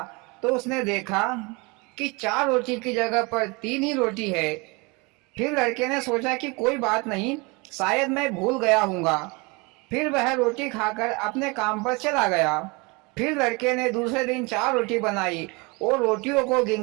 तो उसने देखा कि 4 रोटी की जगह पर 3 ही रोटी है। फिर लड़के ने सोचा कि कोई बात नहीं, शायद मैं भूल गया हूँगा। फिर वह रोटी खाकर अपने काम पर चला गया। फिर लड़के ने दूसरे दिन 4 रोटी बनाई और रोटियों को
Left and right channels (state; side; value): quieter; left; 27.8 dB